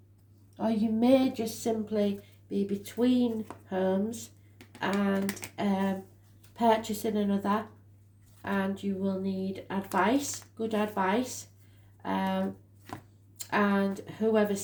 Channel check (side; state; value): both; identical; correlation 1.00